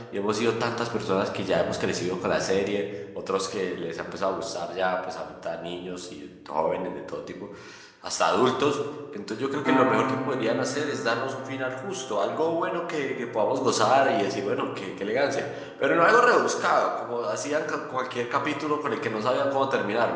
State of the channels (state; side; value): identical; both; correlation 1.00